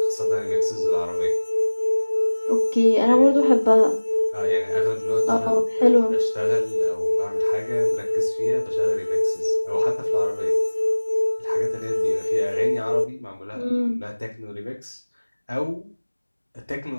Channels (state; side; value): inverted; both; correlation -1.00